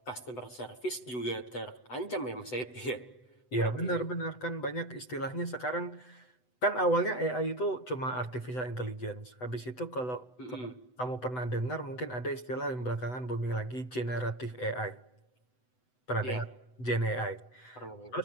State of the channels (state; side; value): late; right; 8.0 ms